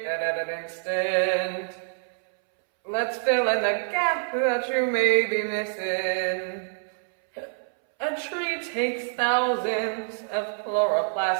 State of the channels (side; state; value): left; silent; 61 dB below the other